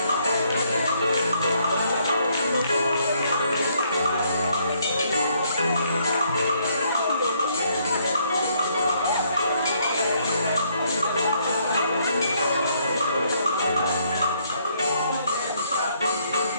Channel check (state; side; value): inverted; both; correlation -0.70